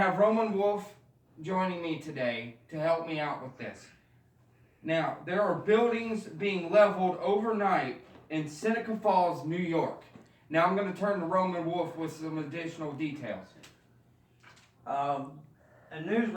Roman Wolf joining me today to help me out with this. Now, there are buildings being leveled overnight in Seneca Falls, New York. Now I'm going to turn to Roman Wolf with some additional details. A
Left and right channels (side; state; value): both; identical; correlation 1.00